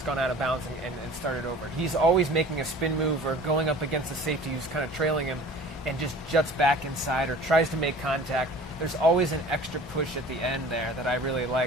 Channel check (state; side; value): normal; both; correlation 0.44